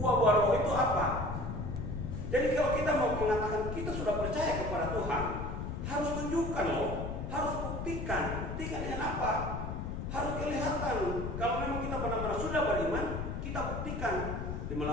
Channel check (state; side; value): noise; left; rumble, 4 dB below the sound